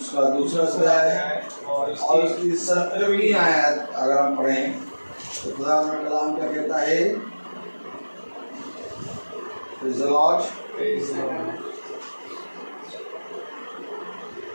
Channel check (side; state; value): both; inverted; correlation -1.00